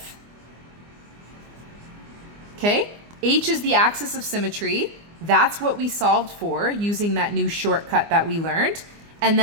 Okay, H is the axis of symmetry. That's what we solved for using that new shortcut that we learned. And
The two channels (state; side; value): late; left; 24 ms